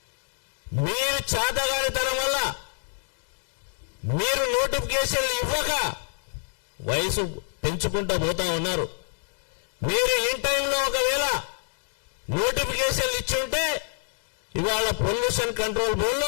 మీరు చేతగానితనం వల్ల మీరు నోటిఫికేషన్లు ఇవ్వక వయసు పెంచుకుంటూ పోతా ఉన్నారు. మీరు ఇన్ టైంలో ఒకవేళ నోటిఫికేషన్లు ఇచ్చుంటే ఇవాళ పొల్యూషన్ కంట్రోల్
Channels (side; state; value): right; silent; 60 dB below the other